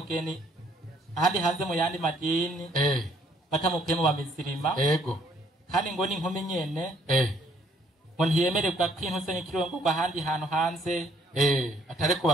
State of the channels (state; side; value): normal; both; correlation 0.64